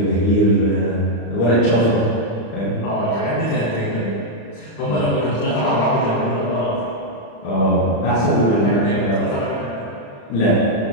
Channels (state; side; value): late; right; 35 ms